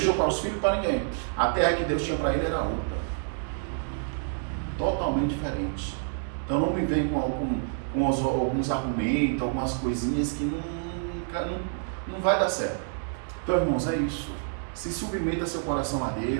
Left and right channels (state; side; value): silent; left; digital silence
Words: para os filhos, para ninguém. A terra que Deus tinha para ele era outra. Totalmente diferente. Então, não me vem com alguns argumentos, algumas coisinhas que não vai dar certo. Então, irmãos, é isso. Se submeta seu coração a